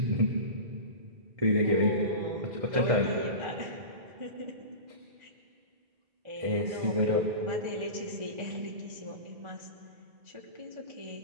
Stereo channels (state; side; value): late; left; 1.4 ms